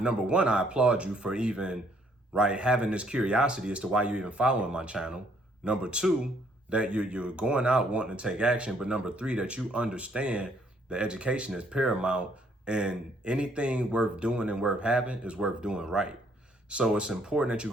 one, I applaud you for even, right, having this curiosity as to why you even following my channel. Number two, that you're going out wanting to take action, but number three, that you understand that education is paramount, and anything worth doing and worth having is worth doing right. So it's important that you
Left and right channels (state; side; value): normal; both; correlation 0.66